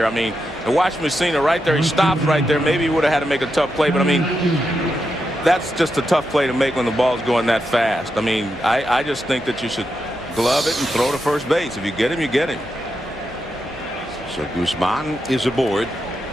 I mean, to watch Messina right there, he stops right there. Maybe he would have had to make a tough play, but I mean, that's just a tough play to make when the ball's going that fast. I mean, I just think that you should glove it and throw to first base. If you get him, you get him. So Guzman is aboard.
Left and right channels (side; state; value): both; normal; correlation 0.86